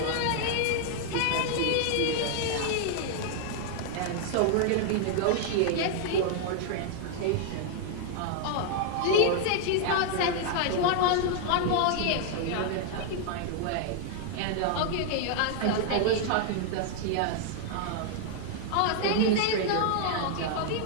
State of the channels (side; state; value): both; different; correlation 0.00